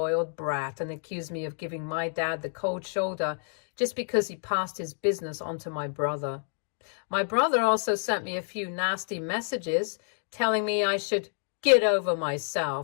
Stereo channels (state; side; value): silent; right; 59 dB below the other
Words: brat and accused me of giving my dad the cold shoulder just because he passed his business on to my brother. My brother also sent me a few nasty messages telling me I should get over